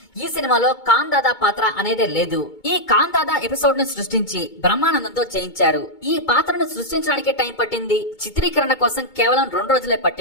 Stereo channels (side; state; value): right; late; 2.2 ms